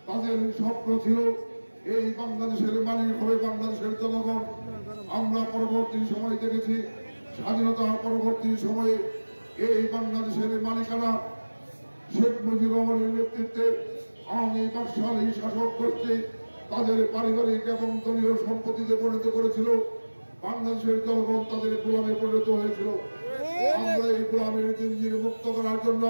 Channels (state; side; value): inverted; both; correlation -1.00